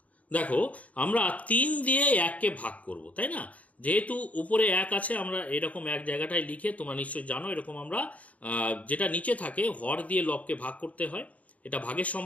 দেখো আমরা 3 দিয়ে 1কে ভাগ করব, তাই না? যেহেতু উপরে 1 আছে, আমরা এরকম এক জায়গাটায় লিখে, তোমরা নিশ্চয়ই জানো এরকম আমরা যেটা নিচে থাকে হর দিয়ে লবকে ভাগ করতে হয়, এটা ভাগের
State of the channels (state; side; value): late; right; 0.069 ms